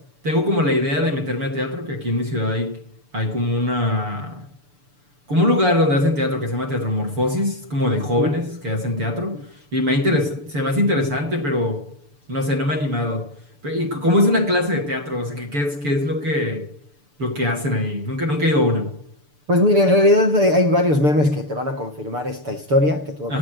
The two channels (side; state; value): left; late; 6.8 ms